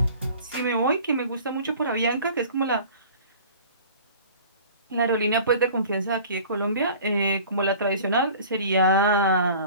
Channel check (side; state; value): both; inverted; correlation -0.45